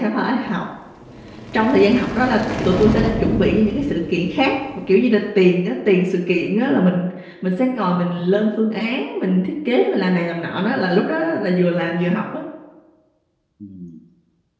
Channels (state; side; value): identical; both; correlation 1.00